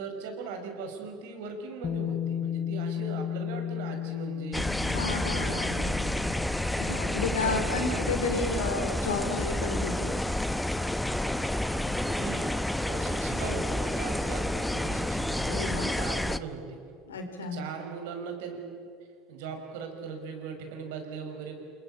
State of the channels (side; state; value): both; normal; correlation 0.66